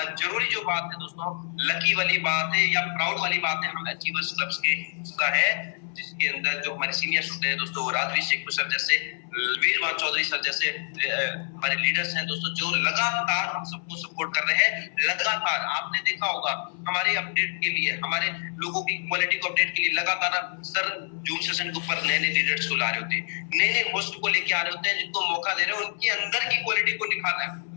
जरूरी जो बात है दोस्तों, लकी वाली बात है या प्राउड वाली बात है, हम अचीवर्स क्लब्स के हिस्सा है, जिसके अंदर जो हमारे सीनियर्स होते हैं दोस्तों, राजवीर शेख सर जैसे, वीरवान चौधरी सर जैसे हमारे लीडर्स हैं दोस्तों, जो लगातार हम सबको सपोर्ट कर रहे हैं। लगातार आपने देखा होगा हमारे अपडेट के लिए, हमारे लोगों की क्वालिटी को अपडेट के लिए लगातार सर जूम सेशन के ऊपर नए नए लीडर्स को ला रहे होते हैं, नए नए होस्ट को लेके आ रहे होते हैं, जिनको मौका दे रहे हैं उनके अंदर की क्वालिटी को निखारना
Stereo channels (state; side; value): silent; right; 60 dB below the other